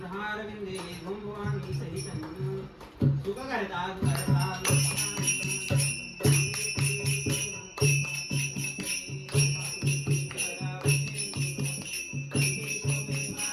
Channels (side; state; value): both; identical; correlation 1.00